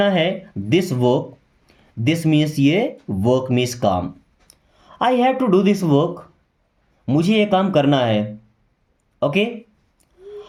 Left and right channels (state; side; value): identical; both; correlation 1.00